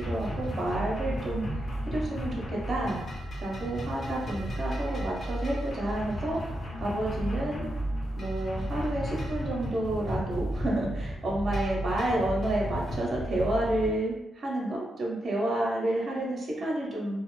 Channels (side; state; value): both; normal; correlation 0.85